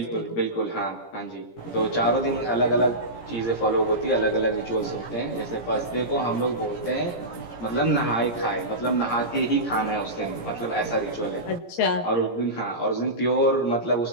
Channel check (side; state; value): right; late; 17 ms